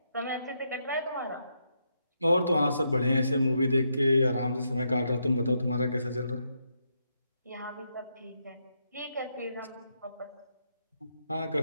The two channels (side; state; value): both; inverted; correlation -0.79